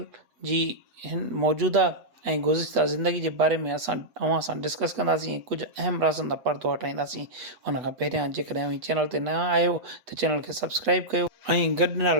जी हिन मौजूदा ऐं गुज़िश्ता ज़िंदगी जे बारे में असां अव्हां सां डिस्कस कंदासीं ऐं कुझु अहम राज़नि दा पर्दो हटाईंदासीं। उन खां पहिरियां जेकॾहिं अव्हीं चैनल ते नवां आहियो त चैनल खे सब्सक्राइब कयो ऐं गॾु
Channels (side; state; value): left; late; 8.2 ms